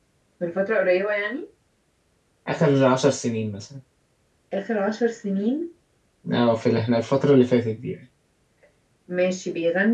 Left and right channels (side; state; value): both; identical; correlation 1.00